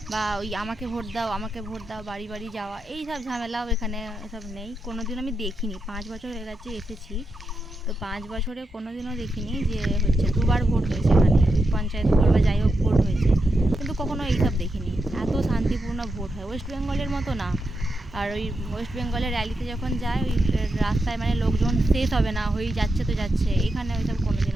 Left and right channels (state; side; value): normal; both; correlation 0.86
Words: বা ওই আমাকে ভোট দাও আমাকে ভোট দাও বাড়ি বাড়ি যাওয়া, এই সব ঝামেলাও এখানে এসব নেই। কোনো দিন আমি দেখিনি, 5 বছর হয়ে গেছে এসেছি, তো 5 বছরে কোনো দিনও দেখিনি যে হচ্ছে দুবার ভোট হয়েছে এখানে, ওই পঞ্চায়েত ভোট বা যাই হোক ভোট হয়েছে, কিন্তু কখনো এইসব দেখিনি। এত শান্তিপূর্ণ ভোট হয়, ওয়েস্ট বেঙ্গলের মতো না। আর ওই ওয়েস্ট বেঙ্গলের র্যালিতে যখন যায় ওই রাস্তায় মানে লোকজন শেষ হবে না, হয়েই যাচ্ছে তো যাচ্ছে, এখানে ওইসব কোনো